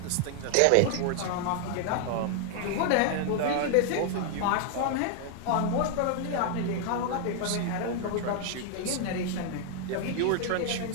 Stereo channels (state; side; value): different; both; correlation 0.00